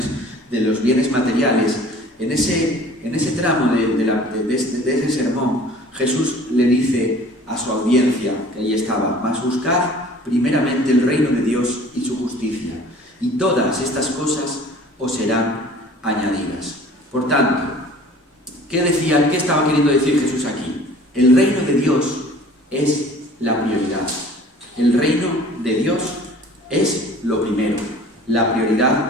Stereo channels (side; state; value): both; normal; correlation 0.48